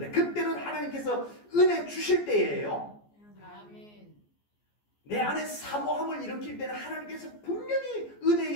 그때는 하나님께서 은혜 주실 때예요. 아멘. 내 안에 사모함을 일으킬 때는 하나님께서 분명히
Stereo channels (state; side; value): late; right; 14 ms